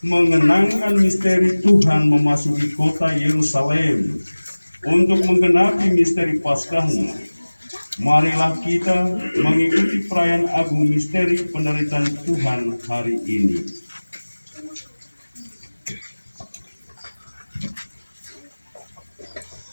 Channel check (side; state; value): both; inverted; correlation -1.00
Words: mengenangkan misteri Tuhan memasuki kota Yerusalem untuk menggenapi misteri Paskahnya. Marilah kita mengikuti perayaan agung misteri penderitaan Tuhan hari ini.